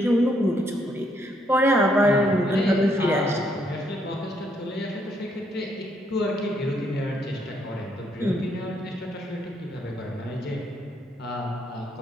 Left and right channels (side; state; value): both; normal; correlation 0.73